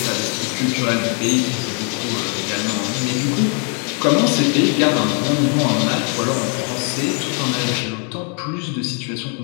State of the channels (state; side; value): quieter; right; 39.8 dB